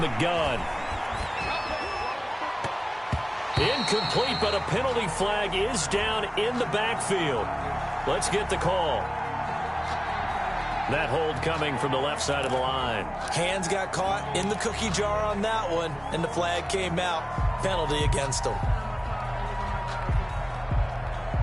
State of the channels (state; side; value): identical; both; correlation 1.00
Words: gun. Incomplete, but a penalty flag is down in the backfield. Let's get the call. That hold coming from the left side of the line. Hands got caught in the cookie jar on that one, and the flag came out. Penalty against them.